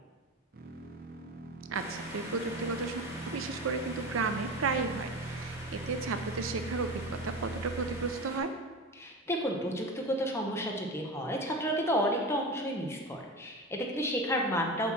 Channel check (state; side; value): normal; both; correlation 0.27